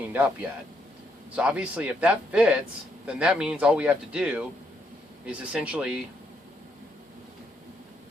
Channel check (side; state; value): both; normal; correlation 0.75